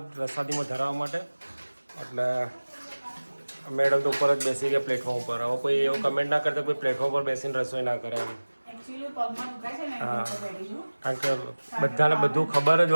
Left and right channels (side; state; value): both; inverted; correlation -1.00